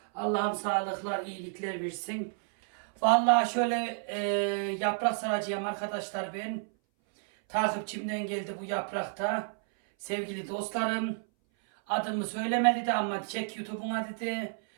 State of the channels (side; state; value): left; silent; 57 dB below the other